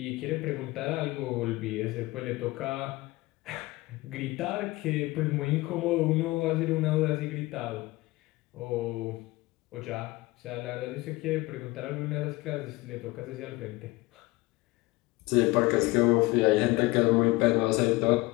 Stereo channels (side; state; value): right; quieter; 20.8 dB